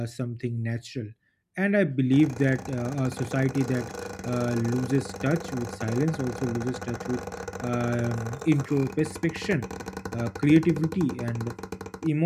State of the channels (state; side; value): identical; both; correlation 1.00